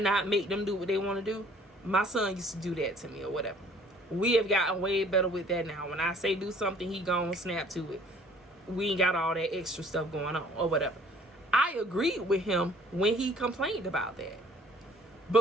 make them do what they want to do. My son used to do that to me or whatever. We have gotten way better with that now. When I say do something, he gonna snap to it. We ain't got all that extra stuff going on or whatever. I agreed with him when he complained about that.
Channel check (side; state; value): both; normal; correlation 0.55